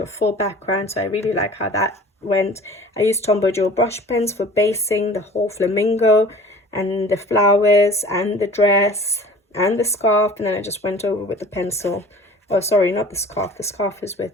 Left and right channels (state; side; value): normal; both; correlation 0.44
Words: a full background, so I really like how that went. I used Tombow Dual brush pens for basing the whole flamingo and the flowers and the dress and the scarf, and then I just went over with the pencil. Oh, sorry, not the scarf. The scarf is